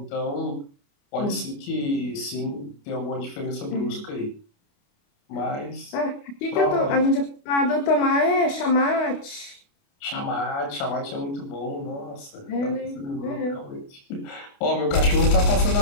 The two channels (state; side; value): late; right; 28 ms